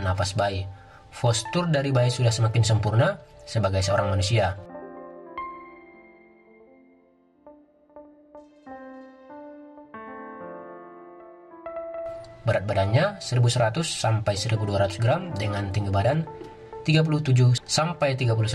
napas bayi. Postur dari bayi sudah semakin sempurna sebagai seorang manusia. Berat badannya 1100 sampai 1200 gram dengan tinggi badan 37 sampai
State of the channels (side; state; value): both; identical; correlation 1.00